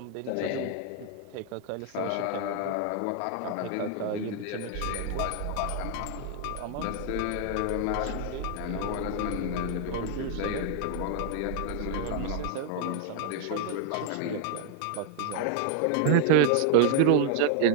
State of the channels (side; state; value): both; different; correlation 0.00